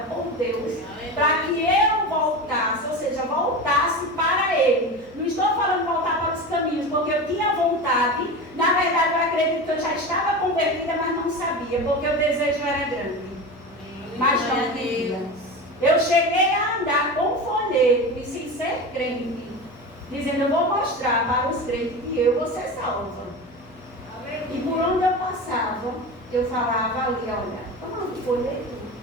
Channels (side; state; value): left; noise; hum, 23 dB below the sound